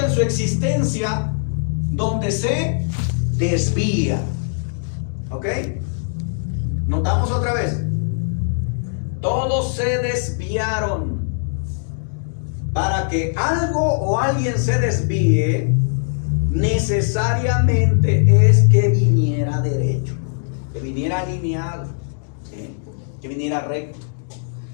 su existencia donde se desvía. ¿Ok? Notamos otra vez. Todos se desviaron. Para que algo o alguien se desvíe, necesariamente es que viniera derecho, que viniera alineado, ¿sí? Que viniera recto.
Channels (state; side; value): silent; right; digital silence